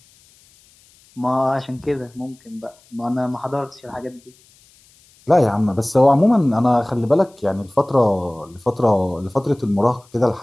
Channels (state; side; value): noise; left; hiss, 30 dB below the sound